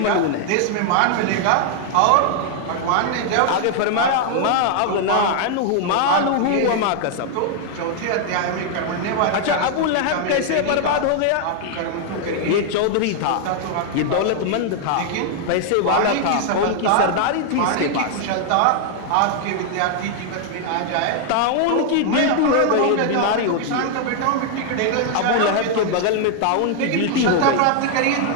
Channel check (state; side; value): different; both; correlation 0.00